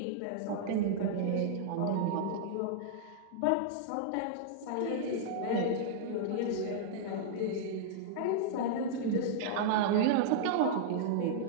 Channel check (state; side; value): different; both; correlation -0.01